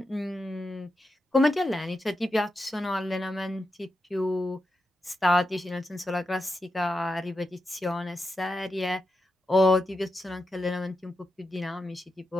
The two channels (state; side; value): normal; both; correlation 0.87